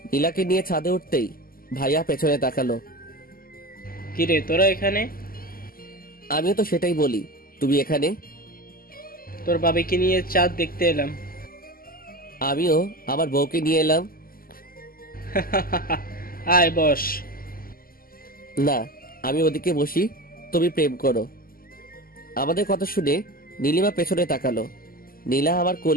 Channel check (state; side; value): late; right; 0.42 ms